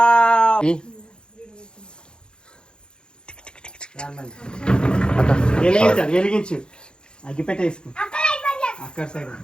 వెలిగించు అగ్గి పెట్టేసుకో అక్కడ side.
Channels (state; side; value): late; right; 0.049 ms